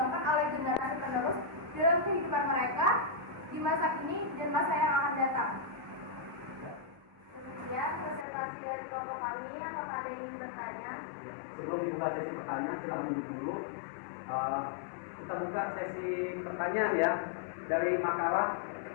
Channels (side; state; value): right; drops out; at 8.2 s